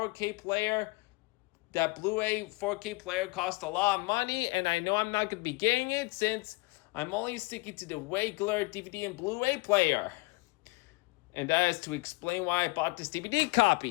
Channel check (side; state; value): right; quieter; 24.6 dB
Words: player, that Blu-ray 4K player costs a lot of money, and I know I'm not going to be getting it since I'm only sticking to the regular DVD and Blu-ray player. And that is to explain why I bought this DVD